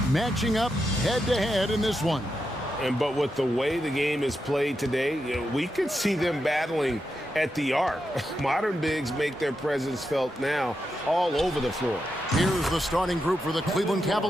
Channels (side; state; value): both; normal; correlation 0.86